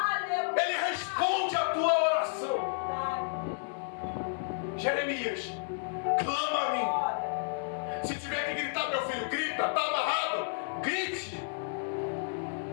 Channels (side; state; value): right; silent; 57 dB below the other